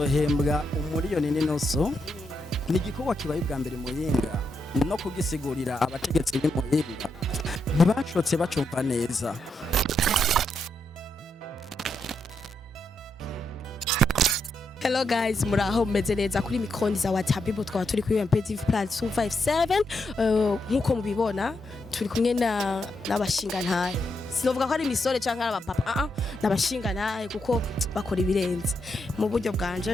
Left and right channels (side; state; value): both; normal; correlation 0.81